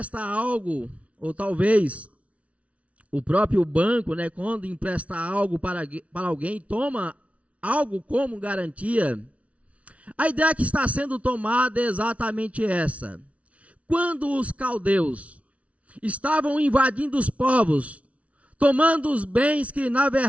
algo ou talvez o próprio banco, né, quando empresta algo para alguém, toma algo como garantia. A ideia que está sendo tomada é exatamente essa. Quando os caldeus estavam invadindo os povos, tomando os bens que na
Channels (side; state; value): left; late; 0.065 ms